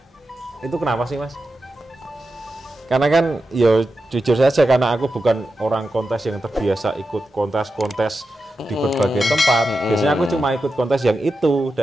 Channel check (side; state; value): both; normal; correlation 0.90